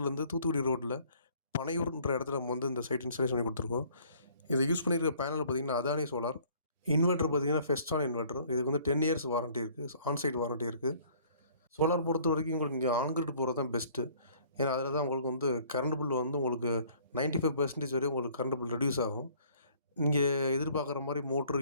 தூத்துக்குடி ரோட்ல பனையூர்ன்ற இடத்துல நம்ம வந்து இந்த சைட் இன்ஸ்டாலேஷன் பண்ணி குடுத்துருக்கோம். இத யூஸ் பண்ணியிருக்க பேனல் பார்த்தீங்கன்னா, அதானி சோலார். இன்வெர்ட்டர் பார்த்தீங்கன்னா, ஃபெஸ்டான் இன்வெர்ட்டர். இதுக்கு வந்து 10 இயர்ஸ் வாரண்டி இருக்கு. ஆன் சைட் வாரண்டி இருக்கு. சோலார் பொறுத்தவரைக்கும் உங்களுக்கு இங்க ஆன் கிரிட் போறது தான் பெஸ்ட்டு. ஏன்னா, அதில தான் உங்களுக்கு வந்து கரண்ட் பில் வந்து உங்களுக்கு 95% வரையும் உங்களுக்கு கரண்ட் பில் ரெடியூஸ் ஆகும். இங்கே எதிர்பார்க்குற மாரி மோட்ரு,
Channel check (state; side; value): inverted; both; correlation -0.57